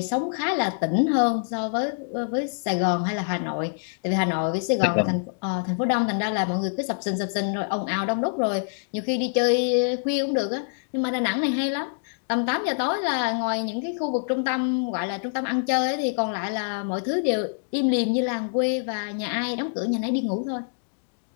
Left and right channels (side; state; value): right; silent; digital silence